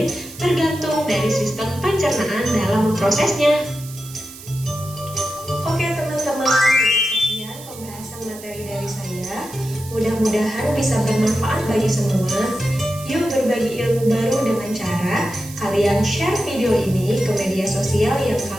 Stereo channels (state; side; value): noise; right; hiss, 16 dB below the sound